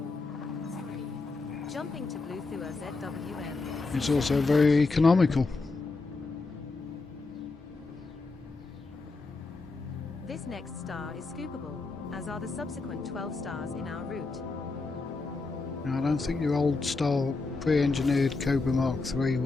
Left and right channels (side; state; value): right; quieter; 3.7 dB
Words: Jumping to Blue Thua ZWM. It's also very economical. This next star is scoopable, as are the subsequent 12 stars in our route. Now, I don't think your old style pre-engineered Cobra Mark III